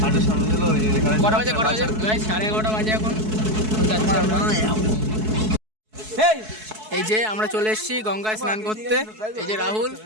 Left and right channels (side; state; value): left; late; 4.6 ms